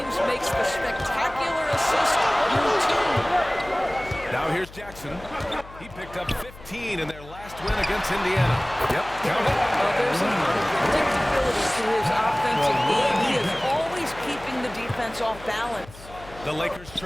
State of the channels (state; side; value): noise; left; hum, 18 dB below the sound